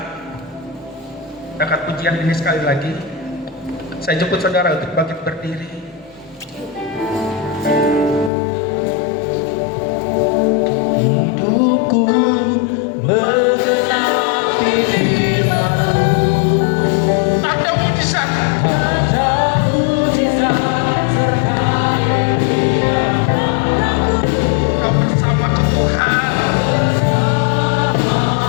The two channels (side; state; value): right; drops out; at 8.3 s